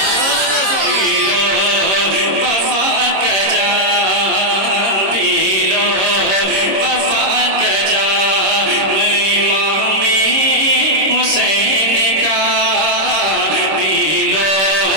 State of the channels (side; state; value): left; late; 26 ms